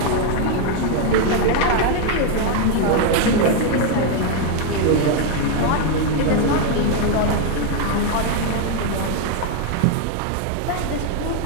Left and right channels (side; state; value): both; different; correlation 0.01